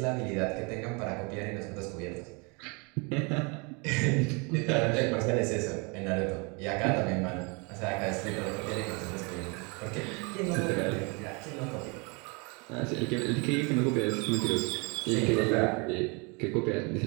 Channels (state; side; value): quieter; left; 31.0 dB